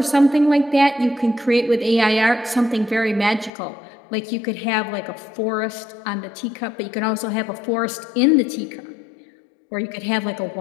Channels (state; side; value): drops out; right; at 3.5 s